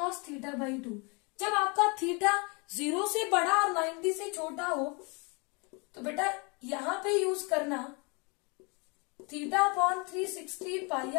theta by 2। जब आपका थीटा 0 से बड़ा और 90 से छोटा हो तो बेटा यहां पे यूज करना theta upon 360 pi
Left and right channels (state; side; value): quieter; right; 31.2 dB